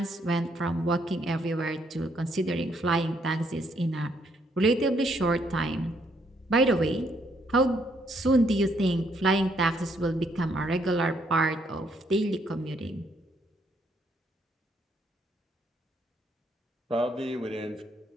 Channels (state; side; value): normal; both; correlation 0.71